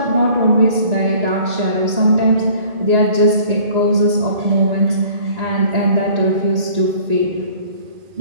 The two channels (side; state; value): left; late; 1.8 ms